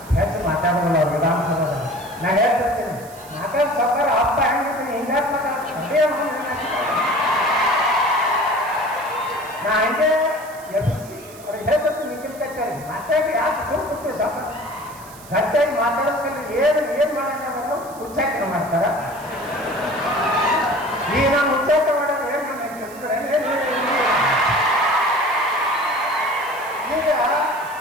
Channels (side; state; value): right; noise; hiss, 20 dB below the sound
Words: ಹೆಚ್ಚು ಮಾತಾಡೋಲ್ಲ ಅವ್ರು ವಿಧಾನಸಭೆಯಲ್ಲಿ. ನಾನು ಹೇಳ್ತಿರ್ತೀನಿ ಮಾತಾಡ ಸರ್ಕಾರ ಹಬ್ಬ ಹೆಂಗಿದ್ದೀನಿ ಹಿಂಗಾರು ಮಾತಾಡ್ತೀನಿ ನಾ ಹಂಗೆ ಎಬ್ಬಿಸಿ ಅವ್ರಿಗೆ ಹೇಳ್ತಿರ್ತೀನಿ ನಿಖಿಲ್ ಕತ್ತಿಯವ್ರಿಗೆ ಮಾತಾಡಿ ಯಾಕೆ ಸುಮ್ಮನೆ ಸ್ವಲ್ಪ ಗಟ್ಟಿಯಾಗಿ ಮಾತಾಡೋದ್ರಲ್ಲಿ ಏನು ಮಾಡೋದು ಉಚ್ಚಾಟನ ಮಾಡ್ತಾರ. ಈಗ ನಾನು ಉಚ್ಚಾಟ ಮಾಡೋದು ಏನು ಈಗ